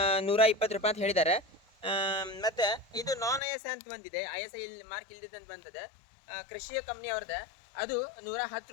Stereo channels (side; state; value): right; drops out; at 3.4 s